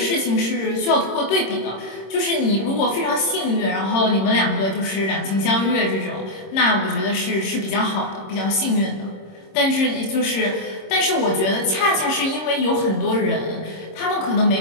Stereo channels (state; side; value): late; right; 26 ms